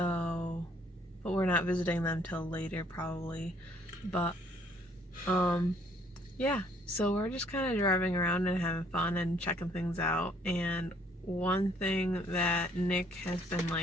but we're not visiting them till later probably. But, yeah, so we're just kind of driving around and having fun and checking things out. And one thing that Nick has been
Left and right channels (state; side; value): normal; both; correlation 0.63